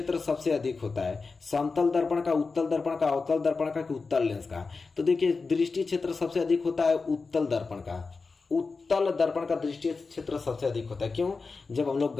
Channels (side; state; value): right; quieter; 4.3 dB